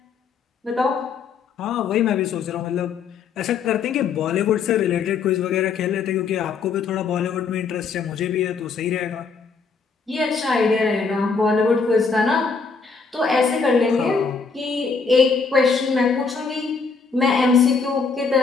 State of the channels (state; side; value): quieter; right; 5.1 dB